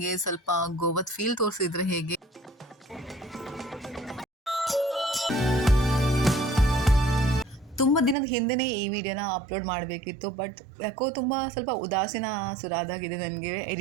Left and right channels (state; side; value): drops out; left; at 8.2 s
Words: ಸ್ವಲ್ಪ ಗೋವಾದ ಫೀಲ್ ತೋರಿಸಿದ್ರೆ ಹೇಗೆ. ತುಂಬ ದಿನದ ಹಿಂದೆನೇ ಈ ವಿಡಿಯೋನ ಅಪ್ಲೋಡ್ ಮಾಡಬೇಕಿತ್ತು, ಬಟ್ ಯಾಕೋ ತುಂಬ ಸ್ವಲ್ಪ ಉದಾಸೀನ ಸುರಾದಾಗಿದೆ ನನಗೆ